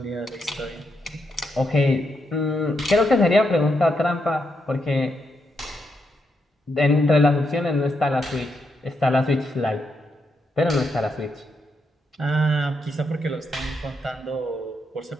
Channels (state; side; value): normal; both; correlation 0.81